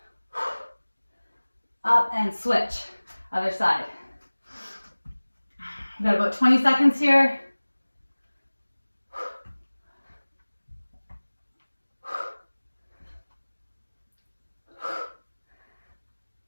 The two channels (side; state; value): both; inverted; correlation -1.00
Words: Up and switch. Other side. We've got about 20 seconds here.